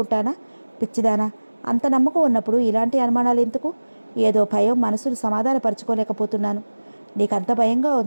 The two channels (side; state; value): both; inverted; correlation -1.00